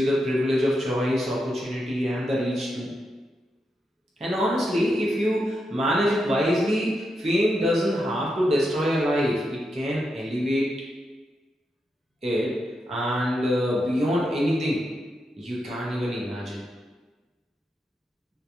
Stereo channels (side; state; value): both; normal; correlation 0.85